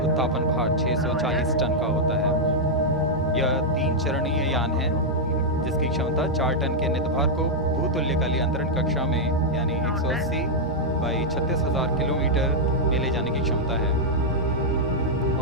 भार 640 टन का होता है। यह 3 चरणीय यान है जिसकी क्षमता 4 टन के नितभार को भूतुल्यकालीय अंतरण कक्षा में यानी 180 बाई 36,000 किलोमीटर में ले जाने की क्षमता है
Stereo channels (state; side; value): normal; both; correlation -0.04